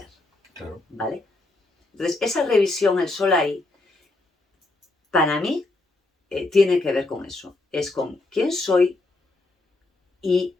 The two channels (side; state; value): right; quieter; 3.0 dB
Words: Claro. ¿Vale? Entonces, esa revisión, el sol ahí, para mí, tiene que ver con eso. Es con quién soy y